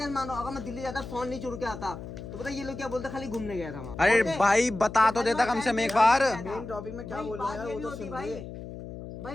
मानो अगर मैं दिल्ली जाता फोन नहीं चुरा के आता तो पता ये लोग क्या बोलते, खाली घूमने गया था वहाँ। अरे ओके? भाई बता तो देता कम से कम एक बार। मेन टॉपिक में क्या भाई, बोल रहा बात है ये वो भी तो होती सुन भाई। ले।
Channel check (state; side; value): noise; left; hum, 11 dB below the sound